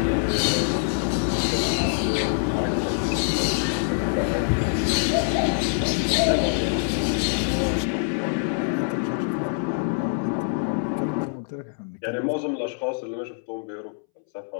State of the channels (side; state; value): right; silent; 62 dB below the other